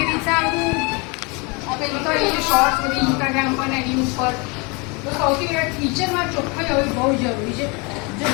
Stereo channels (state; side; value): quieter; right; 29.9 dB